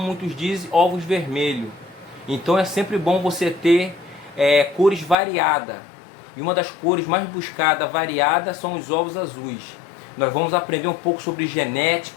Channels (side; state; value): right; drops out; at 5.2 s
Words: dizem, ovos vermelhos. Então é sempre bom você ter cores variadas. E uma das cores mais buscadas, variadas, são os ovos azuis. Nós vamos aprender um pouco sobre